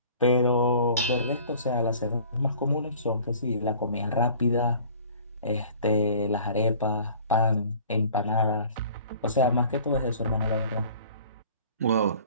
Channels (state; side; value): inverted; both; correlation -0.49